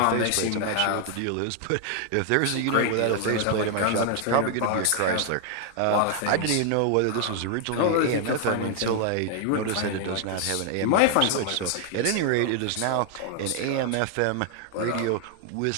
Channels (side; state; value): both; different; correlation 0.00